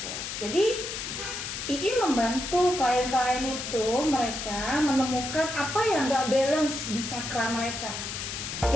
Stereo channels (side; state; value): left; noise; hiss, 6 dB below the sound